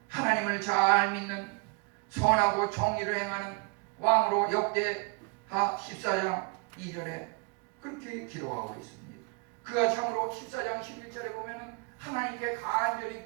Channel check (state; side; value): quieter; left; 31.0 dB